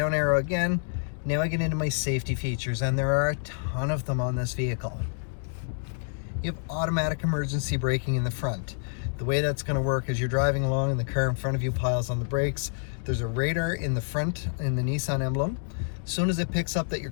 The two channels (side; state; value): right; silent; digital silence